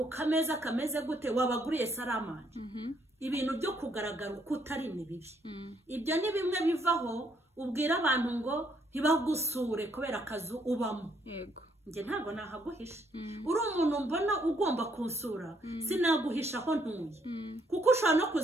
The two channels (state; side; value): normal; both; correlation 0.70